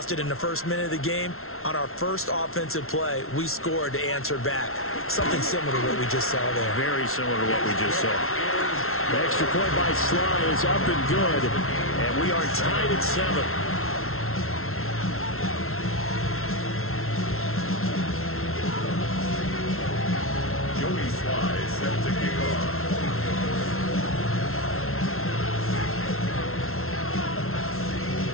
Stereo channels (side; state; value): right; late; 0.62 ms